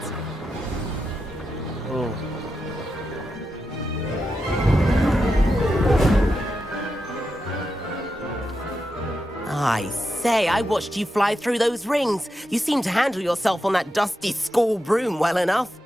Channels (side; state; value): both; normal; correlation 0.88